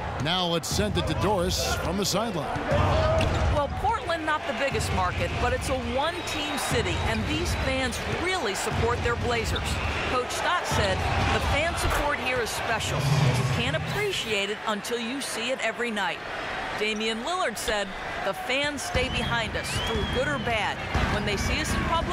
Now let's send it to Doris from the sideline. Well, Portland, not the biggest market, but it's a one-team city, and these fans really support their Blazers. Coach Scott said, the fan support here is special. You can't appreciate it until you see it every night. Damian Lillard said, the fans stay behind us through good or bad. When they see us in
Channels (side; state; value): both; identical; correlation 1.00